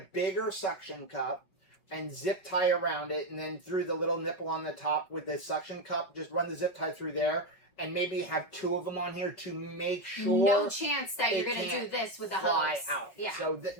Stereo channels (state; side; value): late; right; 5.4 ms